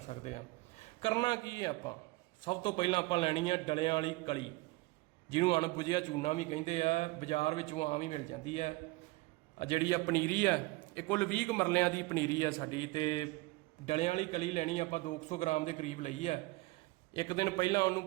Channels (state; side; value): quieter; left; 22.4 dB